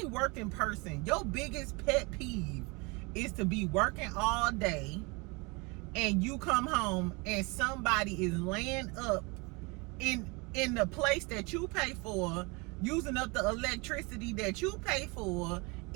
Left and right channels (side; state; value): left; quieter; 28.2 dB